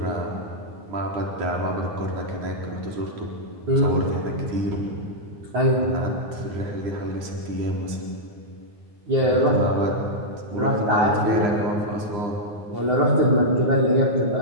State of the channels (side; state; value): left; late; 9.6 ms